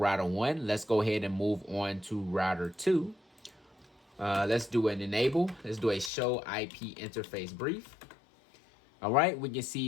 1. Let's go ahead and move on to router 2. Let's do an enable. Let's do a show IP interface brief. All right, we can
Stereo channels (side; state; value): right; drops out; at 6.1 s